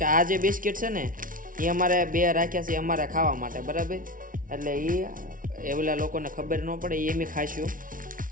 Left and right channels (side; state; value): left; late; 0.39 ms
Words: કે આ જે બિસ્કિટ છે ને એ અમારે બે રાખ્યા છે અમારે ખાવા માટે, બરાબર. એટલે એ ઓલા લોકોને ખબર ન પડે એ એમ ખાઈશું.